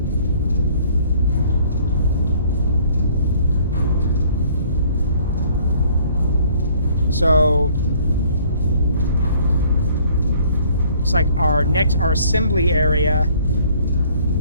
So looks like our assembly area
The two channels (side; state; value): both; inverted; correlation -0.58